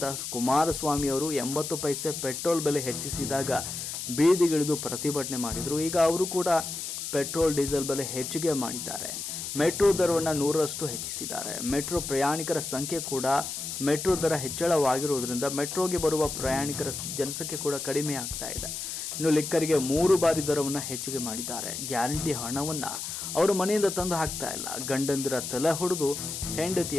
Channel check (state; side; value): noise; left; hiss, 5 dB below the sound